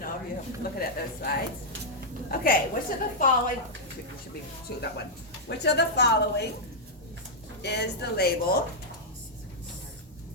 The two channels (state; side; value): normal; both; correlation -0.06